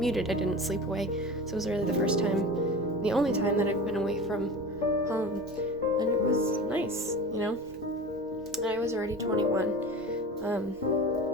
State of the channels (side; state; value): both; normal; correlation 0.33